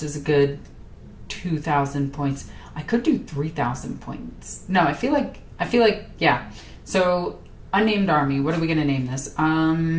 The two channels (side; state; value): both; identical; correlation 1.00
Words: is a good 2,000 points. I could do 3,000 points. No, I feel like, yeah. So, unnamed army. What are we going to name this?